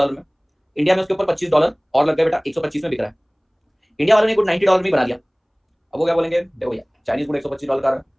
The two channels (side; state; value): both; identical; correlation 1.00